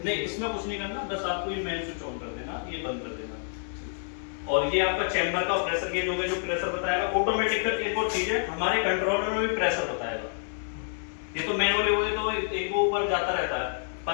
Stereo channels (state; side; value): silent; right; 59 dB below the other